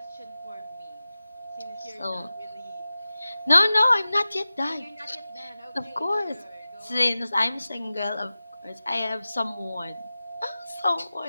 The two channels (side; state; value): both; inverted; correlation -0.96